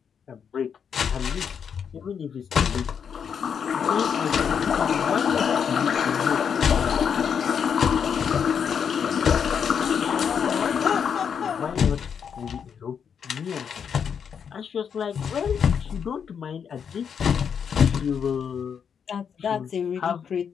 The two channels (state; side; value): quieter; right; 7.2 dB